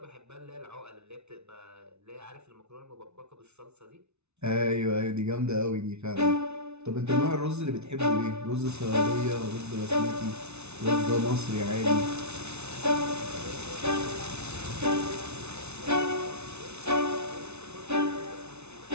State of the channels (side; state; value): left; late; 0.81 ms